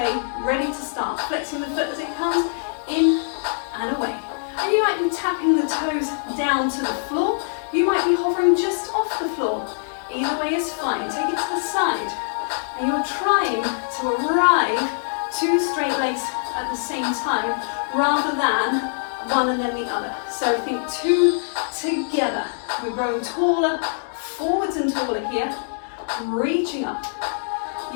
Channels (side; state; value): right; silent; digital silence